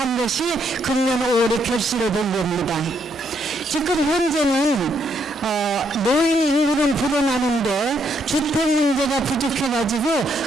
것이 금년 5월에 결실이 된 겁니다. 지금 현재는 노인 인구는 불어나는데 주택 문제가 부족해가지고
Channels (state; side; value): normal; both; correlation 0.74